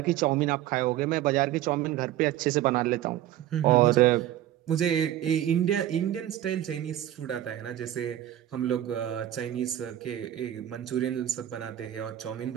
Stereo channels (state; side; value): quieter; left; 12.6 dB